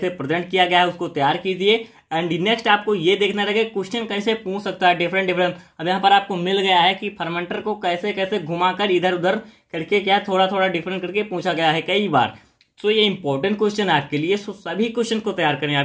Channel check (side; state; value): both; identical; correlation 1.00